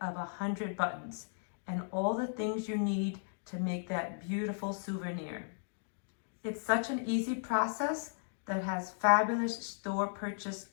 of 100 buttons and all the things you need to make that beautiful souvenir. It's such an easy process that has fabulous store purchase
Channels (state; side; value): silent; right; digital silence